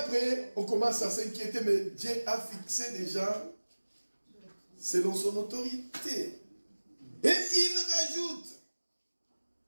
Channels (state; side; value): inverted; both; correlation -1.00